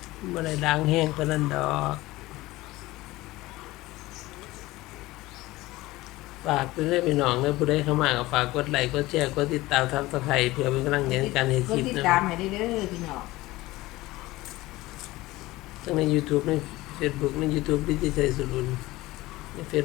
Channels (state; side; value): quieter; right; 18.9 dB